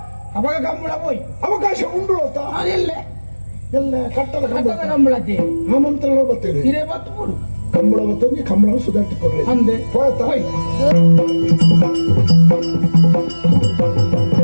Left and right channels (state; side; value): inverted; both; correlation -1.00